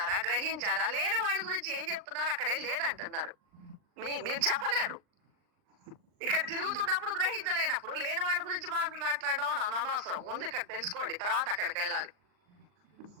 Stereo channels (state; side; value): late; left; 39 ms